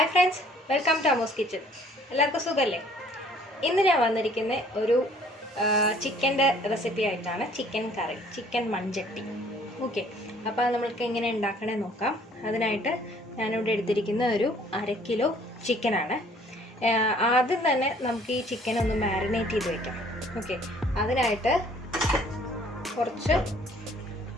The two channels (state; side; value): normal; both; correlation 0.58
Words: friends, welcome to Amos kitchen. എല്ലാവർക്കും സുഖമല്ലേ? ഇന്ന് ഞാൻ വന്നിരിക്കുന്ന ഒരു ചിക്കൻ്റെ റെസിപ്പി ആയിട്ടാണ്. ചിക്കൻ കറി, ചിക്കൻ മൺചട്ടി. ഓക്കെ, അപ്പോൾ നമ്മൾക്ക് എങ്ങനെ ഉണ്ടാക്കണേ നോക്കാം. അതിനായിട്ട് ഞാനിവിടെ എടുത്തിരിക്കുന്ന ഒരു 1/2 കിലോ ചിക്കനാണ്. ആദ്യം തന്നെ നമുക്ക് ഈ ചിക്കൻ ഒന്ന് മാരിനേറ്റ് ചെയ്ത് വയ്ക്കാം. ഓക്കെ, അതിനായിട്ട് കുറച്ച്